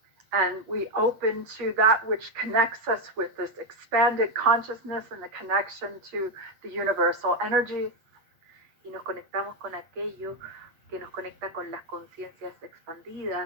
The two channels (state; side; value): late; left; 8.3 ms